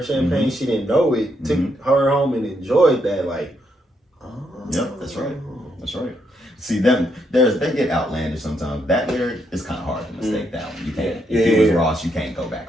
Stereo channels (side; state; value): both; normal; correlation 0.77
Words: champagne. She didn't know it. Took her home and enjoyed that. Like, yep, that's right. See them, they get outlandish sometimes. That lyric is kind of hard to mistake that one. You can't. If it was Ross, you can't go back